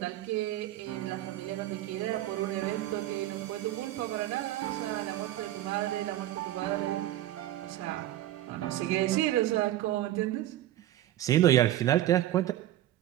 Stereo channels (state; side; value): quieter; left; 13.8 dB